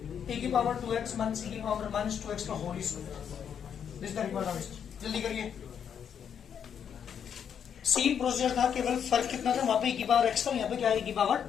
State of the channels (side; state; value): right; quieter; 8.1 dB